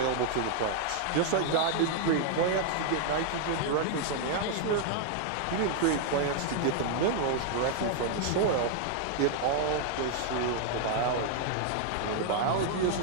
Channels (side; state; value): both; different; correlation 0.00